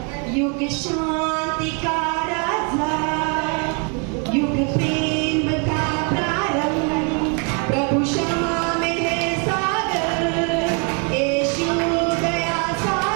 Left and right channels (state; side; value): quieter; left; 36.5 dB